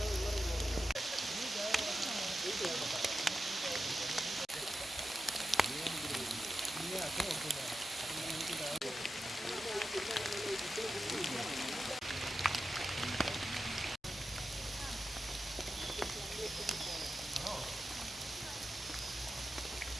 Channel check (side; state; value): both; normal; correlation 0.91